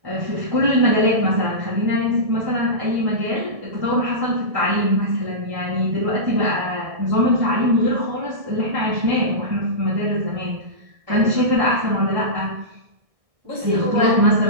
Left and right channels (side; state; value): left; late; 1.6 ms